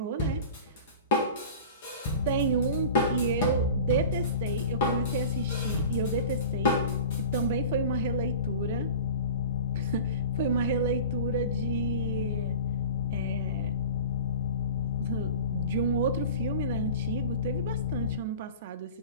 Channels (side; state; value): both; inverted; correlation -0.37